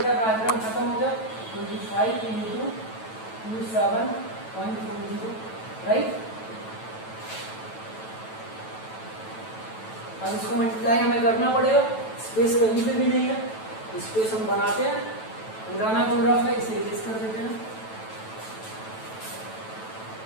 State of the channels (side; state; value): right; late; 9.1 ms